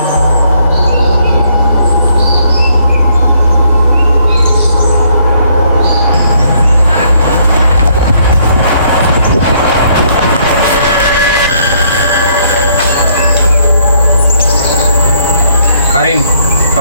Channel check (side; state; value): both; inverted; correlation -0.68